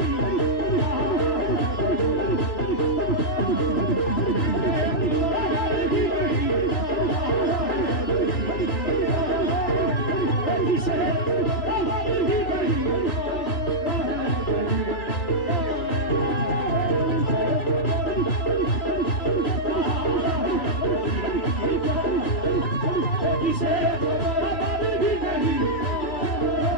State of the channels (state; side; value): late; right; 3.3 ms